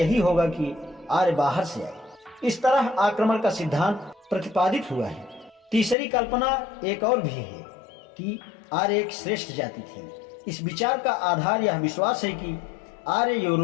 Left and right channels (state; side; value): drops out; right; at 6.0 s